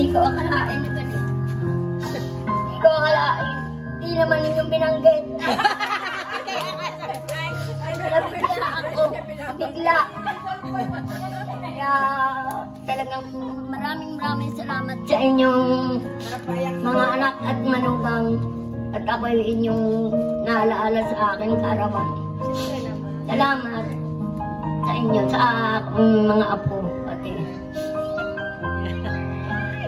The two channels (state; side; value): identical; both; correlation 1.00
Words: ko akalain na ganito. Hindi ko akalain. Hindi naman ninyong binanggit. Nabigla ako. Bigla. Kaya talagang maraming salamat sa inyong mga anak at manugang. At ako'y inyong naalaala sa akin kaarawan. Salamat sa inyo, sa akong mga apo. Pati.